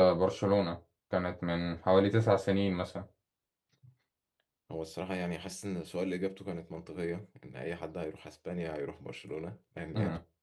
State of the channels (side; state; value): both; identical; correlation 1.00